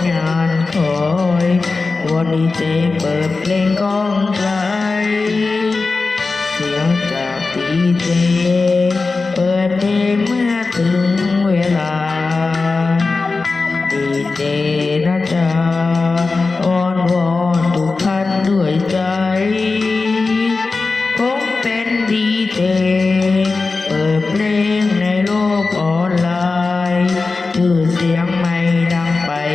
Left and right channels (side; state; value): right; quieter; 3.9 dB